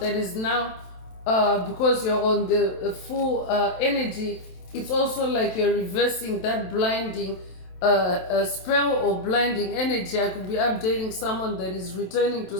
is now, because you're on the full energy, it's also like you're reversing that blinding spell or blinding energy. I could be updating someone that is returning to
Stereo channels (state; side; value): late; right; 27 ms